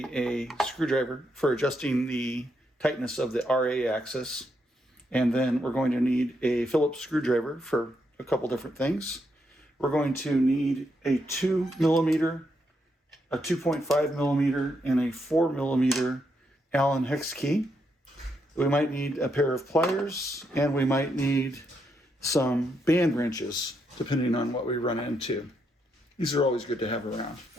a screwdriver for adjusting the tightness of the RA axis. And then we're going to need a Phillips screwdriver for a couple different things. We're going to need a 2 millimeter, a 2.5 millimeter, and a 4 millimeter Allen hex key. We might need a pair of pliers, and we might need some band wrenches, depending on what we run into. These are always good to have around.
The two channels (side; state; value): both; normal; correlation 0.79